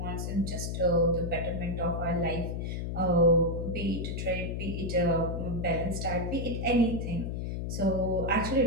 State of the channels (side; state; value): left; noise; hum, 3 dB below the sound